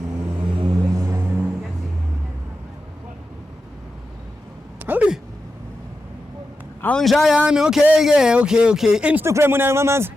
Hey. Awunjayami okay. Instagram unayo mamazi?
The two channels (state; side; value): normal; both; correlation 0.90